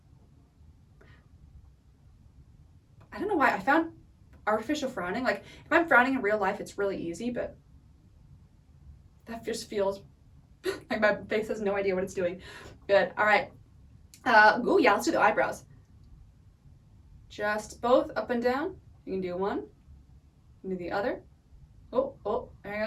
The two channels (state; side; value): identical; both; correlation 1.00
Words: I don't know why I found artificial frowning, like if I'm frowning in real life it's really easy, but that just feels like my face has no idea what it's doing. Good. All right. Oh yeah, let's do the eyebrows. Just both up and down. You can do one, you can do the other. Oh, there you